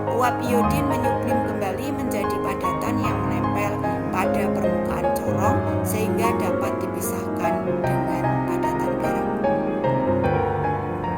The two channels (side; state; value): both; identical; correlation 1.00